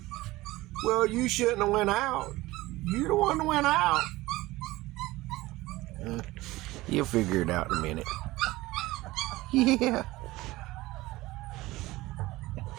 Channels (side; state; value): left; quieter; 18.9 dB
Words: Well, you shouldn't have went out. You the one that went out. You'll figure it out in a minute. Yeah.